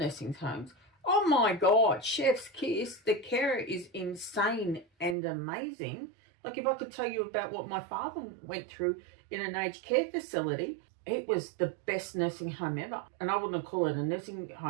homes, oh my God, chef's kiss. The care is insane and amazing. Like, if I could tell you about what my father went through in an aged care facility, it was the best nursing home ever. And I wouldn't call it a nursing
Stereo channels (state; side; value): drops out; left; at 5.2 s